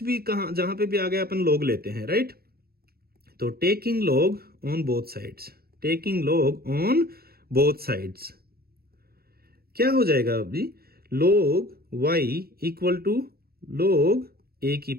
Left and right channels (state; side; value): late; left; 0.45 ms